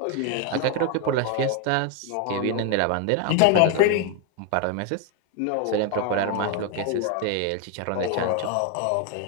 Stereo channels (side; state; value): both; different; correlation 0.01